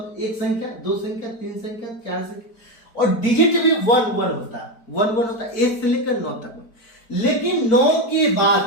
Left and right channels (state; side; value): late; right; 4.5 ms